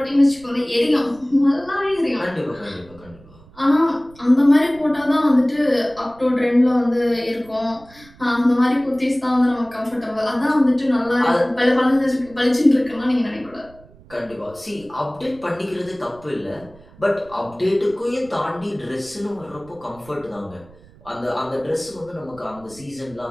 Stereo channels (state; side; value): noise; right; rumble, 24 dB below the sound